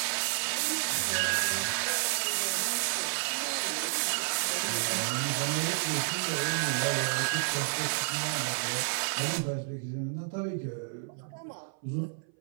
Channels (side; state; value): left; silent; 56 dB below the other